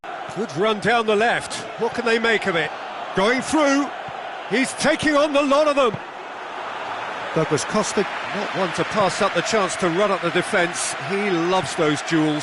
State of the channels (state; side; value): identical; both; correlation 1.00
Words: Good run down the left. What can they make of it? Going through. He's taking on the lot of them. Douglas Costa, not one to pass up the chance to run at the defence. He loves those